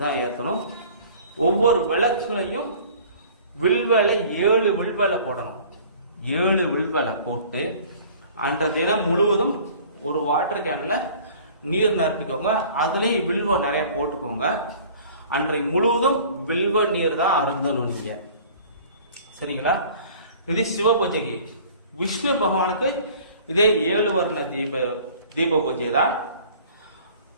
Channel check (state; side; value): inverted; both; correlation -0.48